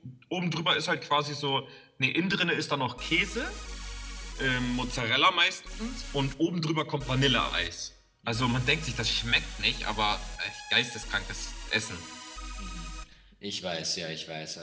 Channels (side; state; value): both; identical; correlation 1.00